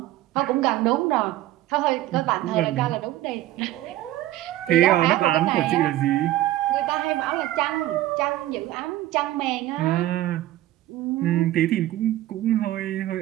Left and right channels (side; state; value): left; quieter; 15.0 dB